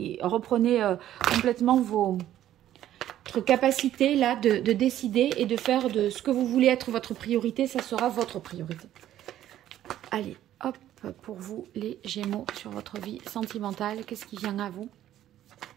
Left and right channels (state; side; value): quieter; left; 12.3 dB